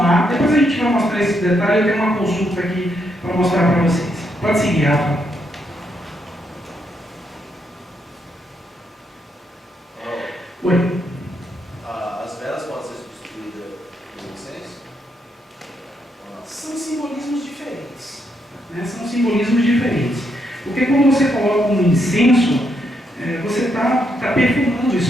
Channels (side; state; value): both; normal; correlation 0.78